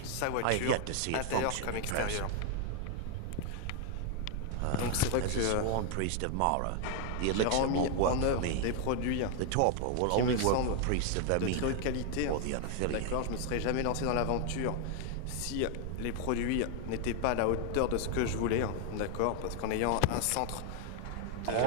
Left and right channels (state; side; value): different; both; correlation 0.00